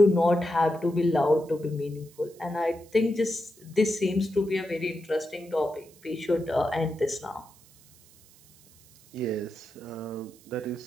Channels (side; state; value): right; noise; hiss, 26 dB below the sound